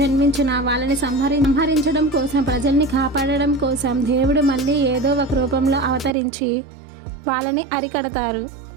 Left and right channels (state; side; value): drops out; left; at 6.2 s